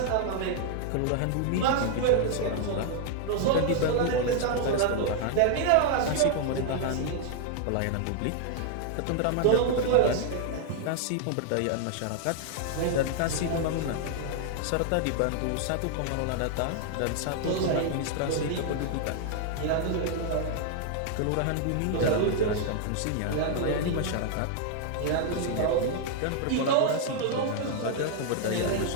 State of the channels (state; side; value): different; both; correlation 0.00